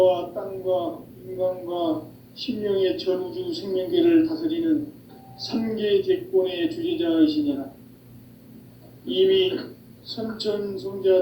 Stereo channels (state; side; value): identical; both; correlation 1.00